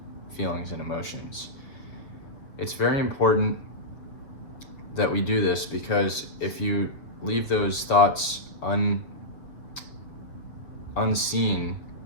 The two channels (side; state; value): right; late; 7.2 ms